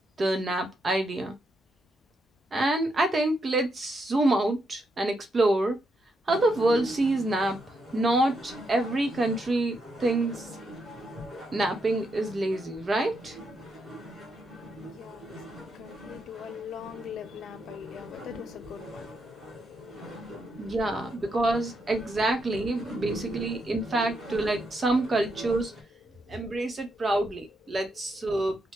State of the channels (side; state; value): both; normal; correlation 0.80